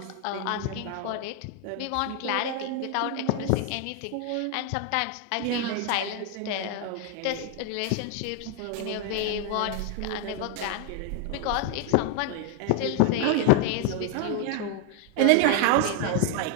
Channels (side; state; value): both; different; correlation 0.01